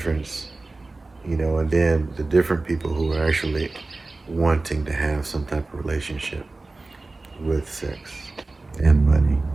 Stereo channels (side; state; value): left; quieter; 3.3 dB